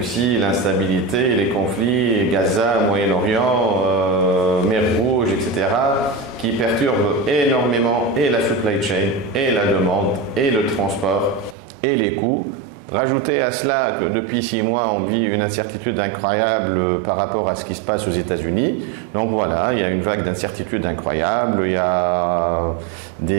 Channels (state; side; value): drops out; left; at 11.6 s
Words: l'instabilité, les conflits, Gaza, Moyen-Orient, Mer Rouge, etc., qui perturbent énormément et la supply chain, et la demande, et le transport, et les coûts. Rajoutez à cela que depuis 6 mois, on vit une incertitude incroyable par rapport à ce qui se passe aux États-Unis. Donc voilà, il y a une vague d'incertitude incroyable, il y a